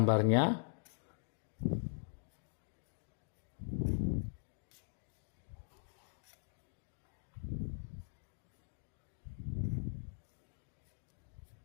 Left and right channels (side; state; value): right; silent; digital silence